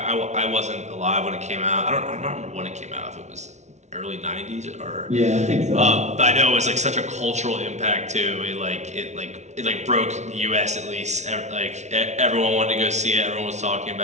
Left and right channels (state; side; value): late; left; 0.33 ms